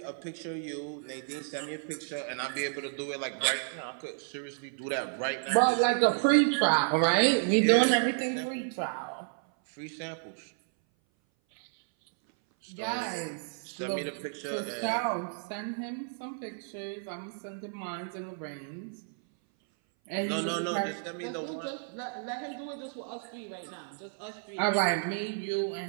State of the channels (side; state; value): left; silent; 57 dB below the other